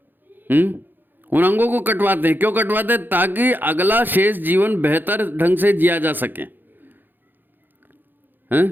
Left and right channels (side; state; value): left; late; 0.091 ms